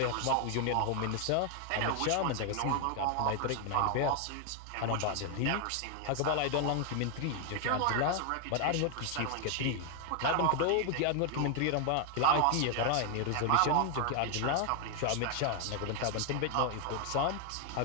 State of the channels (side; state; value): both; different; correlation 0.00